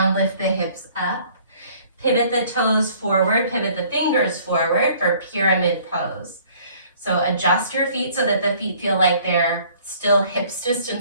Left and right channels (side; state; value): both; inverted; correlation -0.56